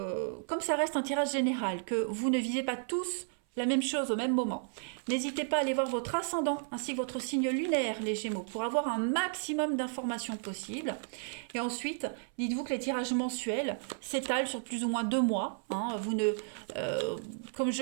ça reste un tirage général, que vous ne visez pas tous la même chose au même moment, n'hésitez pas à aller voir votre ascendant ainsi que votre signe lunaire, les Gémeaux, pour avoir un maximum d'informations possibles. Et ensuite, dites-vous que les tirages mensuels s'étalent sur plus ou moins 2 mois. Vous ne, comme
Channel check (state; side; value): silent; left; 56 dB below the other